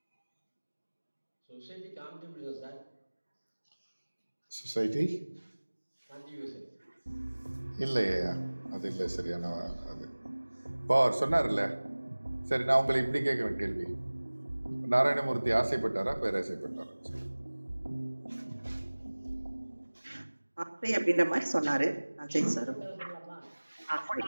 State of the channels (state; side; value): inverted; both; correlation -1.00